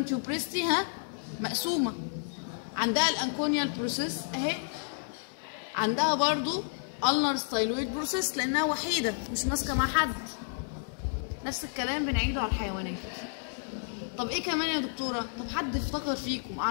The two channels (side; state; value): right; silent; digital silence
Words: تيوبريستي مقسومه، عندها الانكونيال بروسيس اهي، عندها برضو النر ستايلويد بروسيس لانها وحيده مش ماسكه مع حد. نفس الكلام بنعيده على الحيوانات. طب ايه كمان يا دكتوره؟ طب حد افتكر فيكم